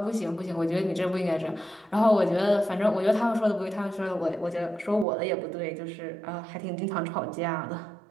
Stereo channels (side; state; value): left; drops out; at 5.1 s